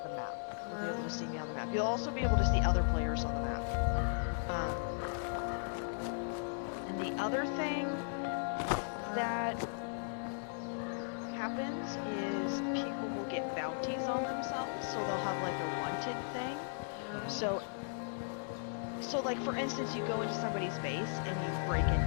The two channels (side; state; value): right; silent; digital silence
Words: the map, you'll be able to see me on the map. You'll also be able to see other players on the map. And the other thing that happens is people will get bounties on themselves, so they'll have like a wanted thing. So like for instance, you go into somebody's base and you break